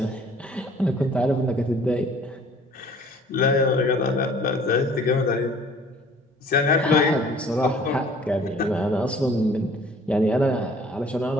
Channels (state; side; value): normal; both; correlation 0.53